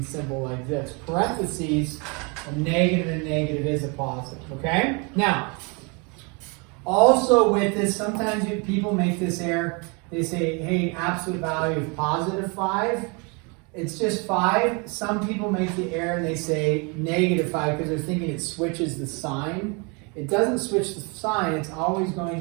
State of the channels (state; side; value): quieter; left; 31.8 dB